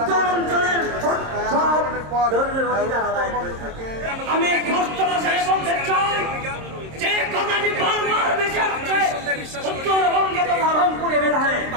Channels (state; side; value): late; left; 26 ms